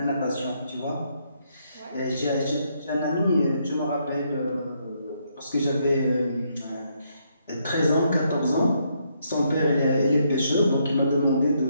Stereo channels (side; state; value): both; inverted; correlation -0.75